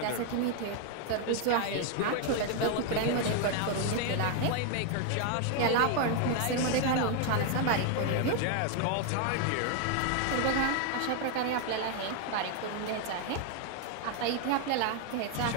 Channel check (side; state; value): both; different; correlation 0.00